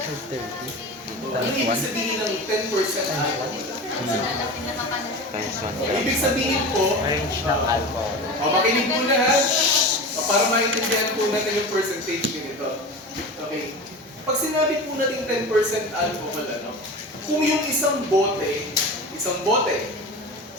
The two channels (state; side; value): normal; both; correlation 0.30